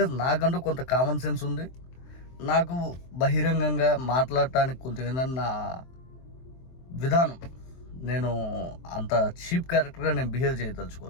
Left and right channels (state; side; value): late; right; 23 ms